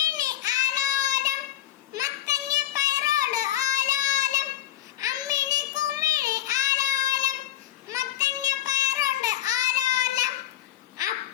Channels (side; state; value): right; quieter; 13.2 dB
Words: ആലോലം, മത്തങ്ങ പയറോട് ആലോലം, അമ്മിണി കുമ്മിണി ആലോലം, മത്തങ്ങ പയറോട് ആലോലം,